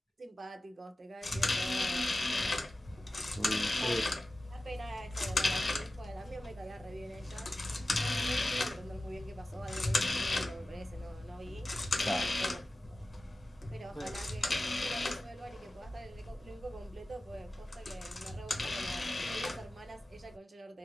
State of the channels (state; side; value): normal; both; correlation 0.96